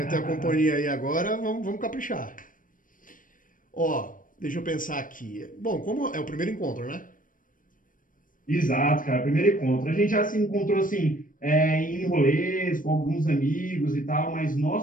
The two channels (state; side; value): late; right; 0.39 ms